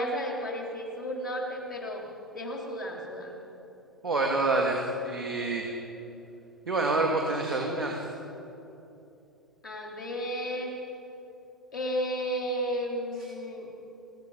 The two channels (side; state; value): both; normal; correlation 0.30